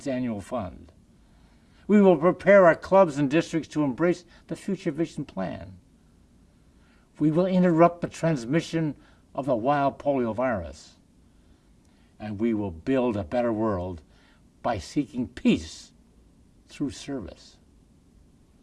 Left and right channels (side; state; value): both; identical; correlation 1.00